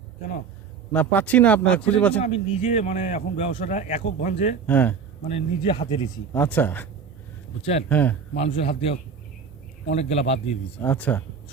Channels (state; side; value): quieter; left; 6.2 dB